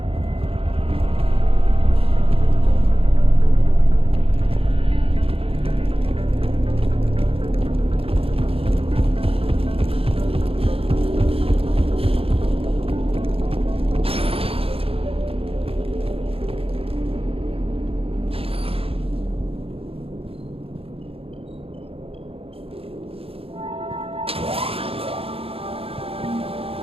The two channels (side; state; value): left; late; 0.27 ms